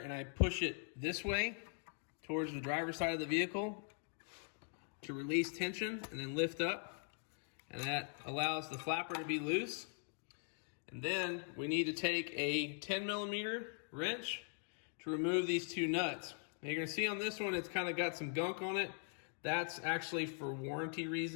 I push it this way towards the driver's side of the vehicle to release tension and then lift up. And that allows the flapper to be loose. And then we need to take a 10mm wrench to remove these two nuts. Now you're going to see on this one it's kind of got some gunk on it. That's actually for warranty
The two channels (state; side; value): silent; right; 50 dB below the other